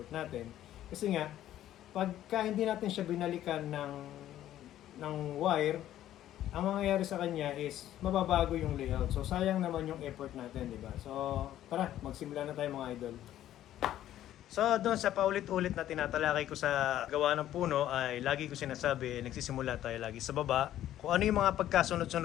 natin. Kasi nga, pagka hindi natin siya binalikan ng wire, ang mangyayari sa kanya is mababago yung layout. So sayang naman yung effort natin, di ba? So tara, magsimula na tayo mga idol. So doon sa paulit-ulit na tinatalakay ko sa gawa ng puno ay lagi ko sinasabi, nagsisimula tayo lagi sa baba. Kung ano yung mga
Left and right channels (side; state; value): right; quieter; 12.5 dB